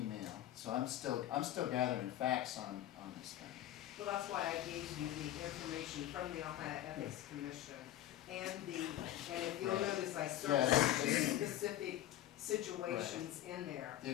so I'm still gathering facts on this thing. Well, that's why I gave you the information from the Ohio Ethics Commission and if you'll notice, I circled Yes. specific situations in there. The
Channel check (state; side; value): quieter; right; 13.0 dB